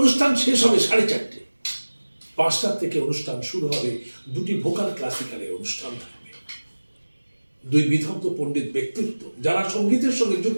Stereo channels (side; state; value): both; inverted; correlation -1.00